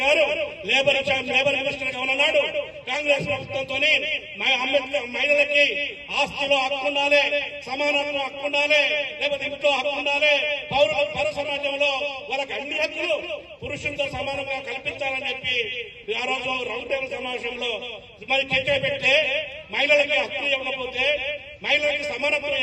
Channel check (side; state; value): both; identical; correlation 1.00